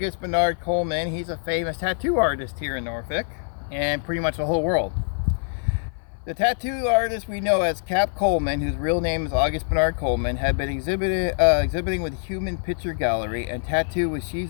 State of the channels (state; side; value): silent; right; 56 dB below the other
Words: Bernard Coleman. He's a famous tattoo artist here in Norfolk and pretty much the whole world. The tattoo artist we know as Cap Coleman, whose real name is August Bernard Coleman, had been exhibiting with the Human Picture Gallery and tattoo with